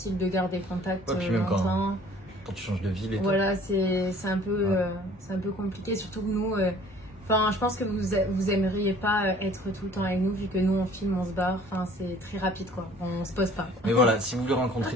de garder contact longtemps. Quand tu changes de ville et tout. Voilà, c'est un peu compliqué, surtout que nous, je pense que vous aimeriez pas être tout le temps avec nous, vu que nous on filme, on se barre, c'est très rapide quoi, on se pose pas. Mais voilà, si vous voulez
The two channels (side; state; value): both; normal; correlation 0.53